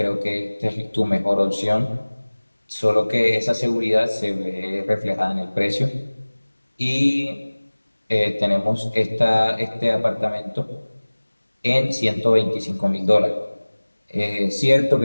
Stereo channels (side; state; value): both; inverted; correlation -1.00